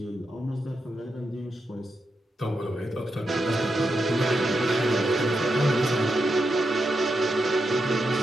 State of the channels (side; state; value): both; normal; correlation 0.85